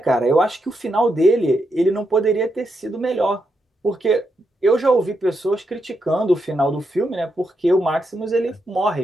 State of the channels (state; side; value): normal; both; correlation 0.82